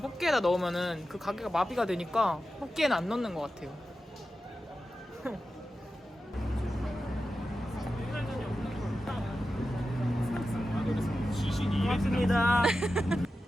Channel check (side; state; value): both; normal; correlation 0.92